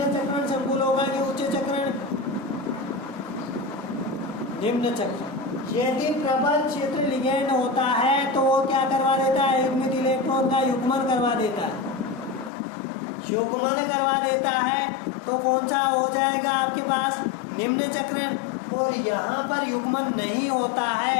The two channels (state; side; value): drops out; right; at 12.5 s